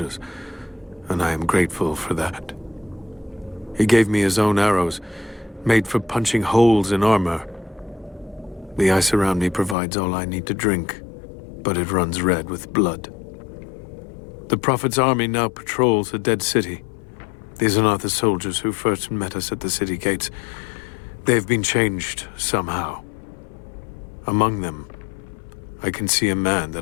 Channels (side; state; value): right; drops out; at 9.8 s